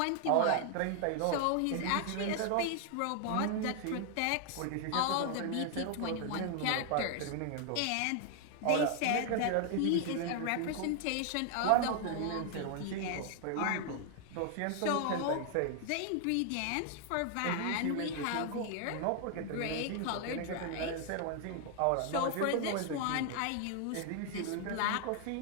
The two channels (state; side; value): different; both; correlation 0.00